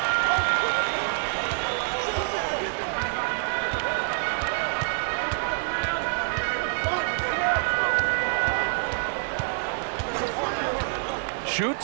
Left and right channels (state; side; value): silent; left; digital silence